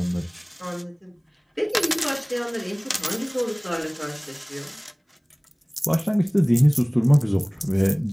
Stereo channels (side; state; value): both; identical; correlation 1.00